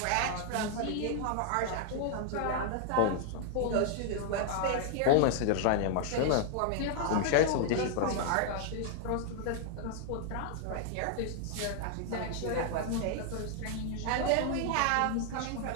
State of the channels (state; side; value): different; both; correlation 0.00